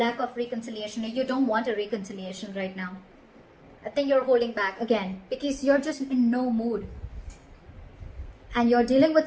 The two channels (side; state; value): both; identical; correlation 1.00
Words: of reconciliation. You don't want a reconciliation right now. I think you're holding back again because you're just in no mood. And you're dealing with